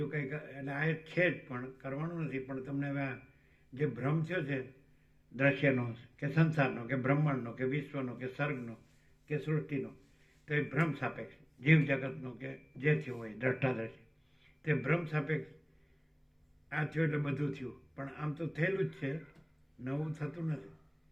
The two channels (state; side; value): identical; both; correlation 1.00